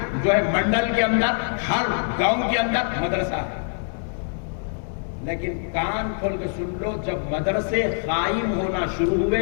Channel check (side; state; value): right; silent; 55 dB below the other